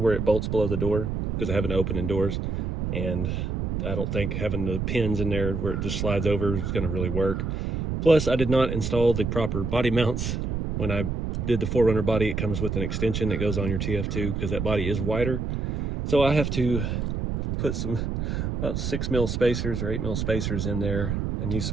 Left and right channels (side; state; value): right; noise; rumble, 2 dB below the sound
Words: it bolts below the door because I have an opening doors, and I don't think having the pins in there where it just slides over is gonna really work. Plus, I did not install the proper body mounts. When I did the 4Runner body, it comes with an extension that goes on your TF2 because that body is wider. So I have to put some about 6mm spacers or 8mm spacers in there and use